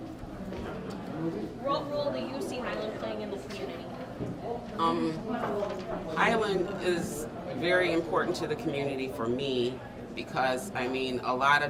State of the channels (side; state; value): both; identical; correlation 1.00